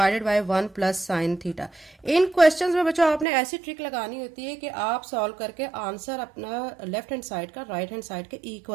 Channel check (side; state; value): left; drops out; at 3.2 s